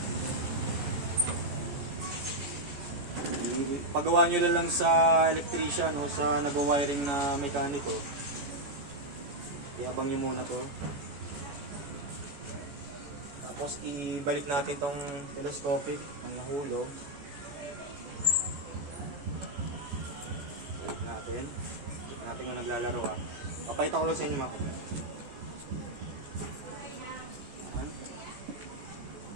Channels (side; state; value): left; late; 14 ms